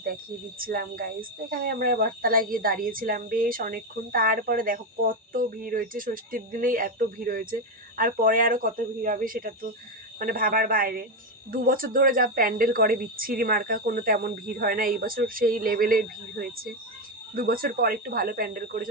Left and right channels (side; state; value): both; normal; correlation 0.09